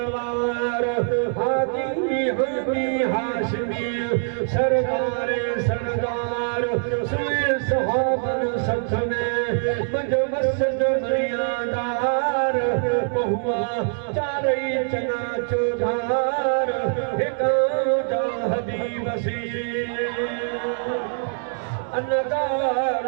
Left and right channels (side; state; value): left; silent; digital silence